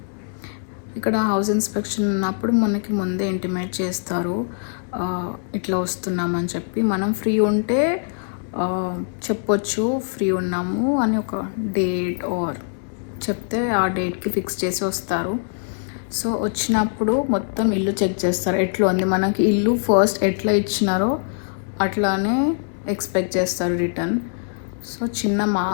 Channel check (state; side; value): silent; right; digital silence